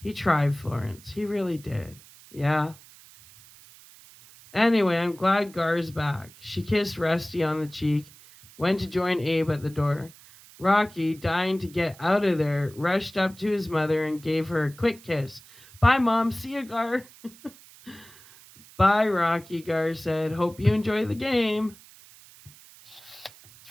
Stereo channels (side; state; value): right; noise; hiss, 22 dB below the sound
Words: tried, Florence. He really did. Yeah. Anyway, I'm glad Gar's back. She kissed Rusty on the cheek, went to join Abe at the door. Rocky, dying to get out of there, rushed up to his mother and gave her a quick kiss. Bye, Mom. See you, Gar. Bye, Rocky, Gar said. Hope you enjoy the game.